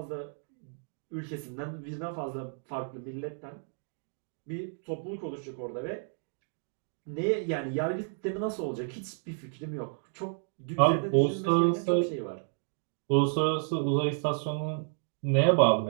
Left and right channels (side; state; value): left; silent; 57 dB below the other